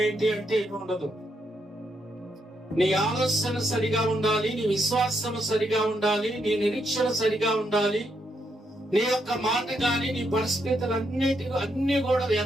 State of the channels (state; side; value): normal; both; correlation 0.78